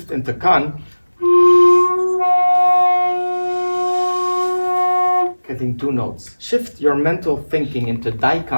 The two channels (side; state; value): both; inverted; correlation -1.00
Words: into Kan, getting two notes. Shift your mental thinking into